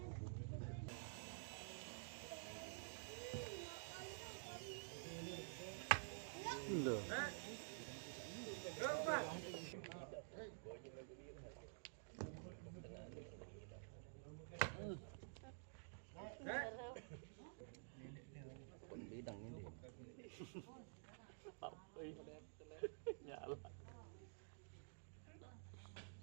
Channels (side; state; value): left; silent; digital silence